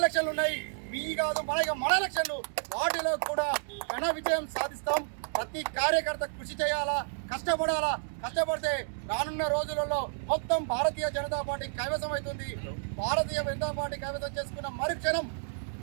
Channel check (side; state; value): left; silent; 57 dB below the other